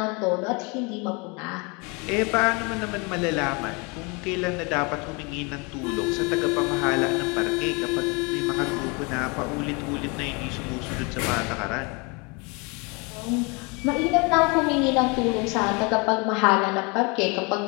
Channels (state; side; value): quieter; right; 30.0 dB